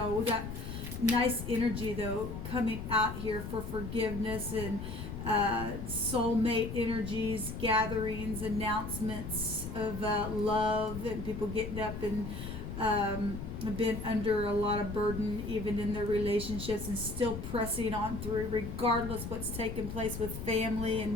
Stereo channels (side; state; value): left; noise; rumble, 7 dB below the sound